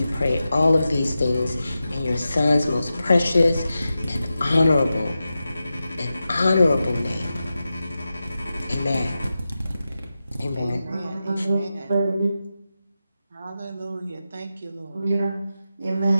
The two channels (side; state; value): both; inverted; correlation -0.92